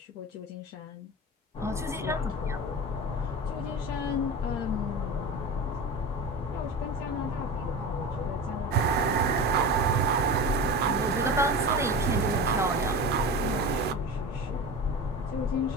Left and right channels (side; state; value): both; normal; correlation 0.29